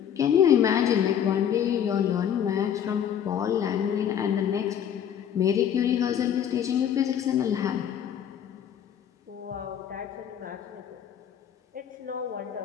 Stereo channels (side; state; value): right; quieter; 9.2 dB